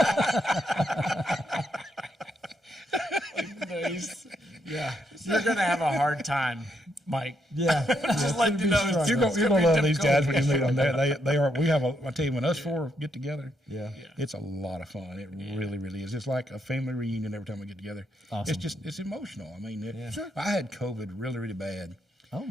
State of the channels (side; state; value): both; normal; correlation 0.77